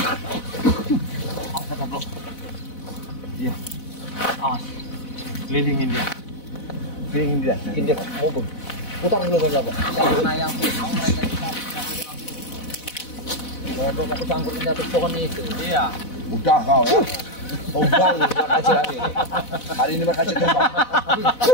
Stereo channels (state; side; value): late; right; 4.0 ms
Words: Awas. Kelilingin dia. Mungkin dia mau putar dulu kan Bapak. Karena yang mau mereka kita Mau aku sangkut jatuh pohon itu. iya. Udah kau ya. Tumbang makasih hari ini. Hari ini makasih tumbang.